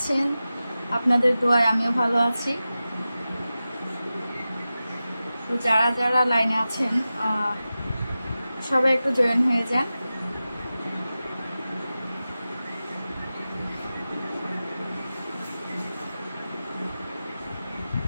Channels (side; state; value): both; inverted; correlation -0.94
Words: আপনাদের দোয়ায় আমিও ভালো আছি। তো যারা যারা লাইনে আছেন সবাই একটু জয়েন হয়ে যান।